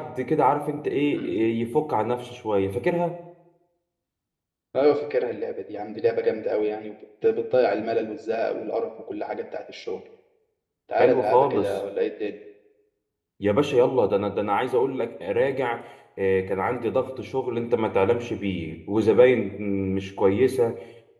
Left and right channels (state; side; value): identical; both; correlation 1.00